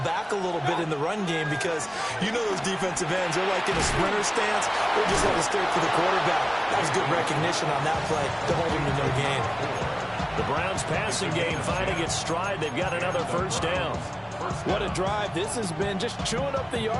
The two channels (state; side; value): identical; both; correlation 1.00